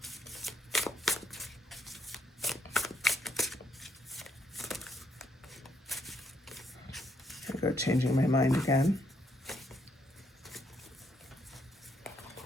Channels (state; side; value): normal; both; correlation 0.74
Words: I'll go changing my mind again.